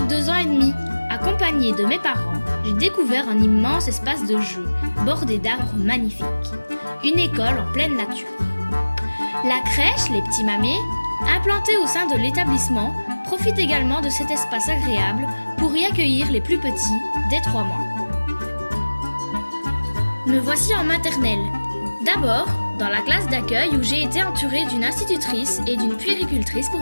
2 ans et demi. Accompagnée de mes parents, j'ai découvert un immense espace de jeu, bordé d'arbres magnifiques. Une école en pleine nature. La crèche, les petits mamés, implantée au sein de l'établissement, profite également de cet espace agréable pour y accueillir les plus petits dès 3 mois. Me voici en maternelle. D'abord, dans la classe d'accueil où j'ai été entourée d'une institutrice et d'une puéricultrice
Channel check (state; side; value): inverted; both; correlation -1.00